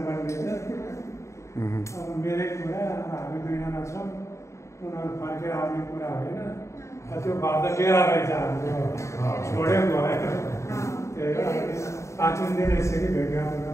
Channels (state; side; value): late; right; 0.14 ms